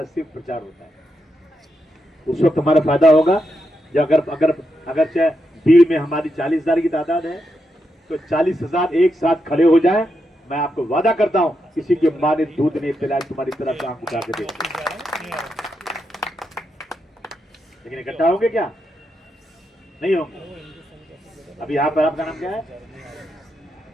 सिर्फ प्रचार होता है। उस वक्त हमारा फायदा होगा जब अगर चाहे भीड़ में हमारी 40,000 की तादाद है, तो 40,000 एक साथ खड़े हो जाए, मैं आपको वादा करता हूं किसी की मां ने दूध नहीं पिलाया तुम्हारी तरफ आंख उठा के देख। लेकिन इकट्ठा होंगे क्या? नहीं होंगे। अभी यहाँ पर आपका नाम क्या है?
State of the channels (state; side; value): normal; both; correlation 0.84